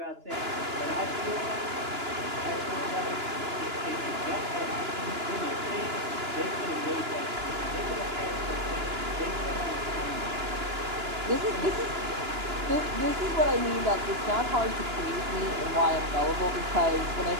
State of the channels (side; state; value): left; late; 2.9 ms